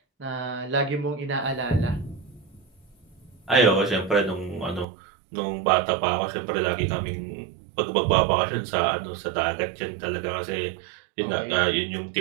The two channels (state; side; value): drops out; left; at 4.9 s